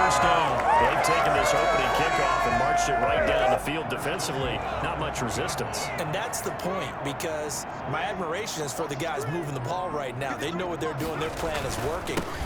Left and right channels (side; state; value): both; identical; correlation 1.00